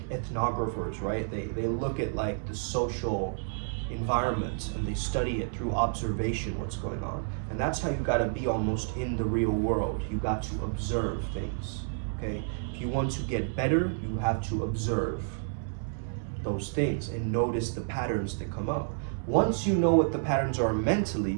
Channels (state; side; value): silent; left; digital silence